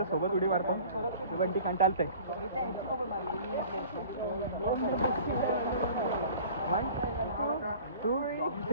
सोबत उडी मारतो. बंटी कंटाळतंय. 1 2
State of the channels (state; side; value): inverted; both; correlation -0.45